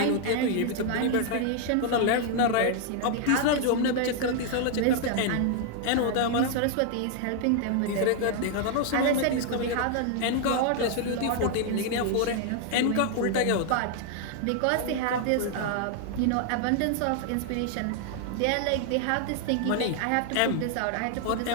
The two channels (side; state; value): both; different; correlation 0.00